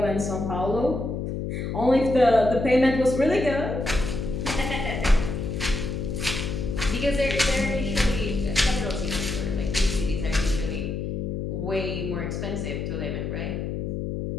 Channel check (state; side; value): noise; left; hum, 3 dB below the sound